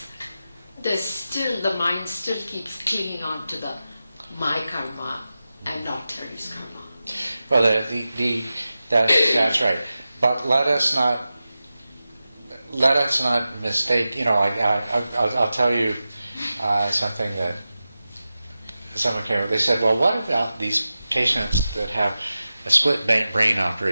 the mind still keeps clinging on to the my karma and not Terry's karma. Well, that's right. But let us not mistake. I'll tell you something that someone came up. They said, "Well, what about these patients that have a split brain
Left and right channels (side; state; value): both; inverted; correlation -0.93